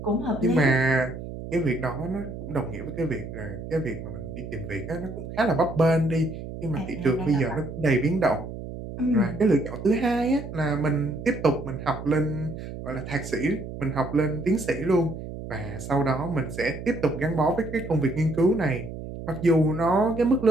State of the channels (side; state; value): right; noise; hum, 10 dB below the sound